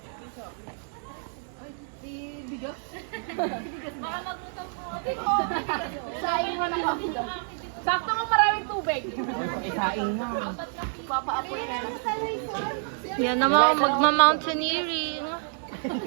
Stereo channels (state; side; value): silent; left; 59 dB below the other